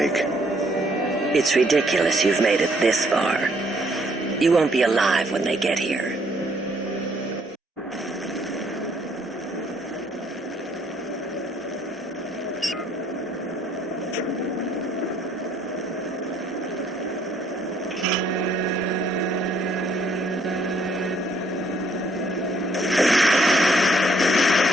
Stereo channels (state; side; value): normal; both; correlation 0.67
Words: It's ridiculous you've made it this far. You won't be alive when they get here.